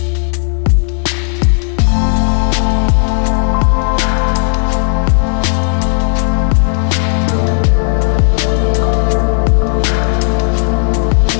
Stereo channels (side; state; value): right; silent; 60 dB below the other